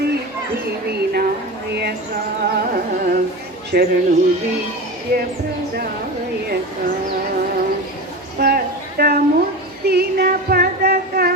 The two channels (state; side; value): normal; both; correlation 0.27